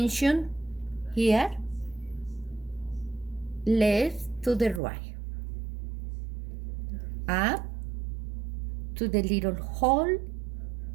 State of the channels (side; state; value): left; drops out; at 4.8 s